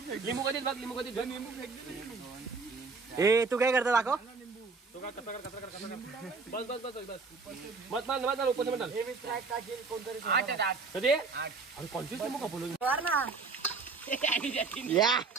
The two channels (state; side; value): quieter; left; 4.4 dB